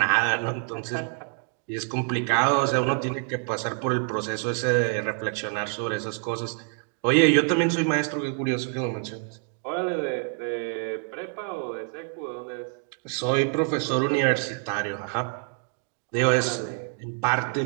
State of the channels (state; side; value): quieter; left; 38.6 dB